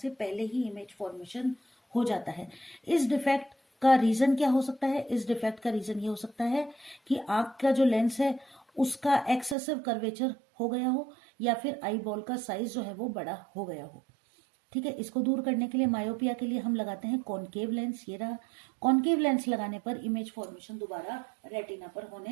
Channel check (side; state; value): left; drops out; at 9.6 s